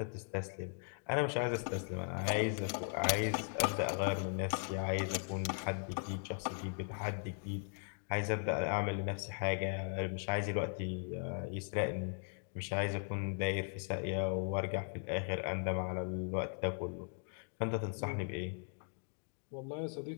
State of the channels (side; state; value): right; silent; 52 dB below the other